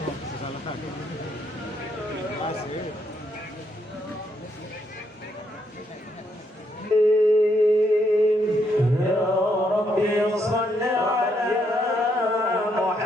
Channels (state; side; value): normal; both; correlation 0.75